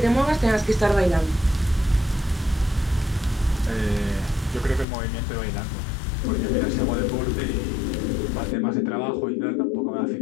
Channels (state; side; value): drops out; right; at 4.9 s